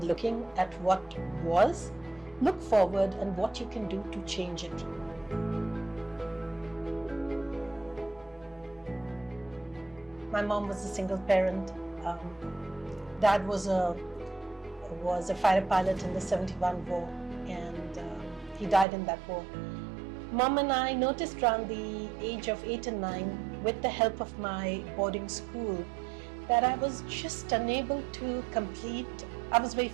looking at what was. Look forward and what you can do to change it. My mom was a single parent. Dad was a fighter pilot in the 71 war, and he died in that war. Mom and I noticed around the age of 8 and 9, with the help of my boarding school, that I was just unable to complete. I was very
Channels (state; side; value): drops out; left; at 18.9 s